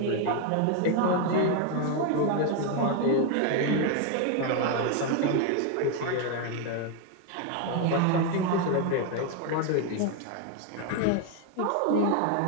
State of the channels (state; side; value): different; both; correlation 0.01